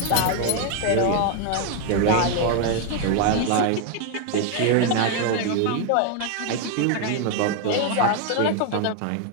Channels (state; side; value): different; both; correlation 0.01